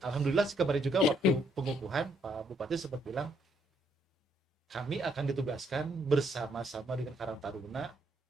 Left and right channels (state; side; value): normal; both; correlation 0.72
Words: alhamdulillah kemarin juga waktu pengukuhan Pak Bupati sempat bilang kami akan ditugaskan bersama-sama dengan Karang Taruna